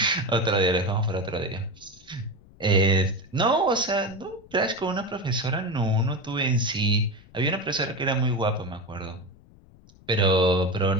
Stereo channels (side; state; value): left; noise; rumble, 25 dB below the sound